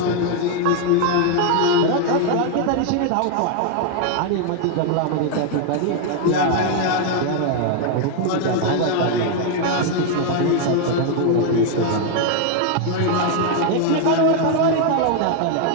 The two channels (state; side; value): different; both; correlation 0.00